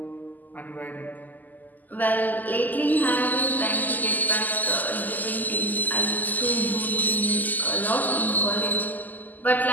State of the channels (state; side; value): late; right; 0.083 ms